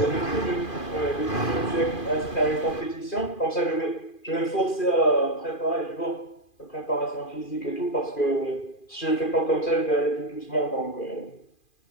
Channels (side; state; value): right; late; 2.4 ms